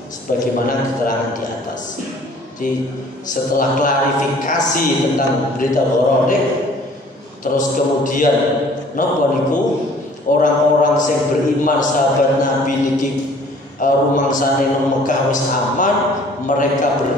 sebagaimana keterangan di atas. Jadi setelah klarifikasi tentang berita gharanik, terus kemudian napa niku orang-orang sing beriman sahabat Nabi niki rumangsane nang Mekah wis aman, mereka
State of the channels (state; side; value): normal; both; correlation 0.54